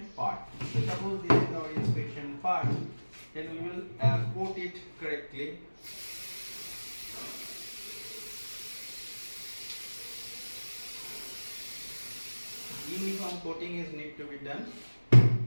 part. So suppose this is our inspection part, then we will coat it correctly. Uniform coating is need to be done.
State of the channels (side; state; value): both; inverted; correlation -1.00